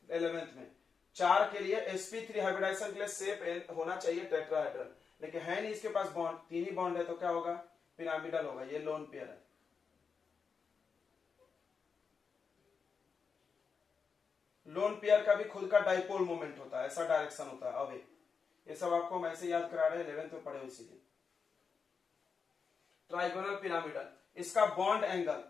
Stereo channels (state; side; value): quieter; right; 5.6 dB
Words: 11th में, 4 के लिए sp3 हाइब्रिडाइजेशन के लिए शेप होना चाहिए टेट्राहेड्रल, लेकिन है नहीं इसके पास बॉन्ड, 3 ही बॉन्ड है, तो क्या होगा, पिरामिडल होगा, ये लोन पेयर है। लोन पेयर का भी खुद का डाइपोल मोमेंट होता है, ऐसा डायरेक्शन होता है। अब ये सब आपको हम ऐसे याद करा रहे हैं, 11th में पढ़े हो इसीलिए। ट्राइगोनल पिरामिडल, इसका बॉन्ड